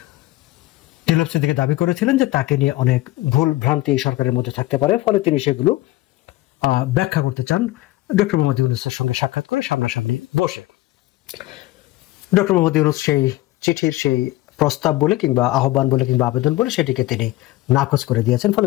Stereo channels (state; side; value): quieter; right; 17.4 dB